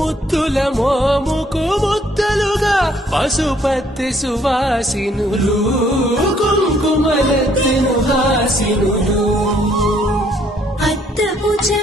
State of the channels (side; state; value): both; normal; correlation 0.65